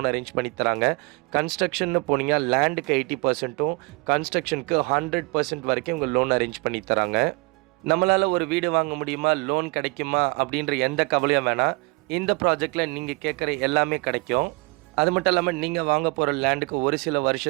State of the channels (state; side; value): quieter; left; 27.7 dB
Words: அரேஞ்ச் பண்ணி தராங்க. கன்ஸ்ட்ரக்ஷன்னு போனீங்கன்னா லேண்டுக்கு 80%ம் கன்ஸ்ட்ரக்ஷனுக்கு 100% வரைக்கும் இவங்க லோன் அரேஞ்ச் பண்ணி தராங்க. நம்மளால் ஒரு வீடு வாங்க முடியுமா, லோன் கிடைக்குமா அப்படின்ற எந்த கவலையும் வேணாம். இந்த ப்ராஜெக்டில் நீங்கள் கேட்குற எல்லாமே கிடைக்கும். அது மட்டும் இல்லாமல் நீங்கள் வாங்க போகிற லேண்டுக்கு ஒரு சில